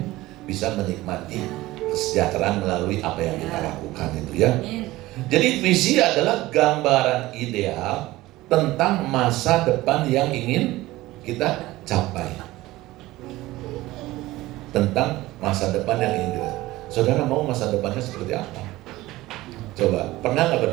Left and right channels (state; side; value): quieter; left; 17.9 dB